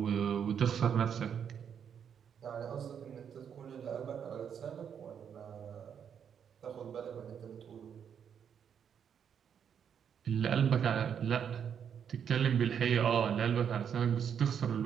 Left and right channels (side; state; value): left; quieter; 8.0 dB